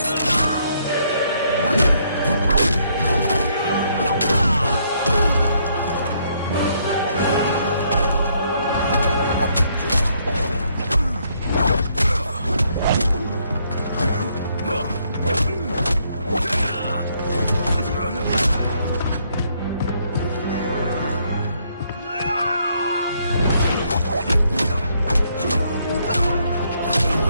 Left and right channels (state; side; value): inverted; both; correlation -0.71